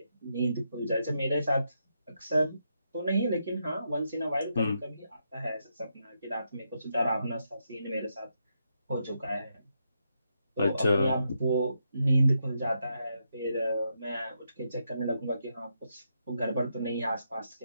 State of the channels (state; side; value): inverted; both; correlation -0.81